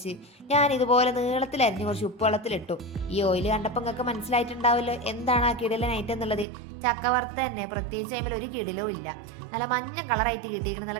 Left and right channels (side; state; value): left; drops out; at 6.5 s